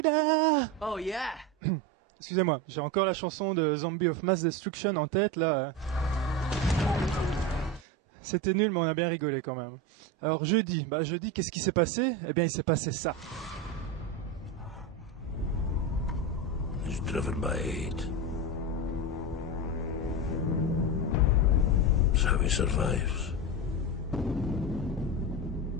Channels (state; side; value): normal; both; correlation 0.19